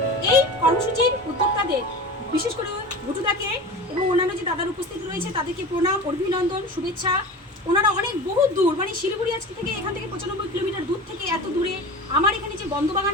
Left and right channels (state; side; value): normal; both; correlation 0.33